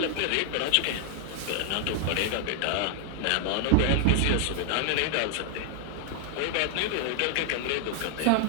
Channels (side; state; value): both; different; correlation 0.00